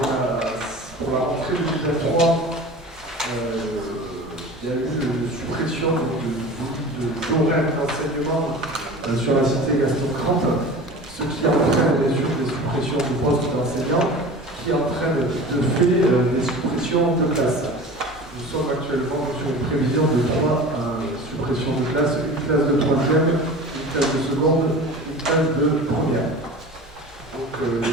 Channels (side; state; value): both; normal; correlation 0.36